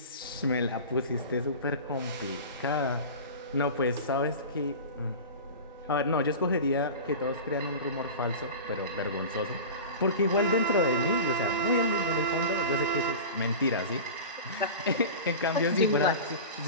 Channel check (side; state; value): both; inverted; correlation -0.33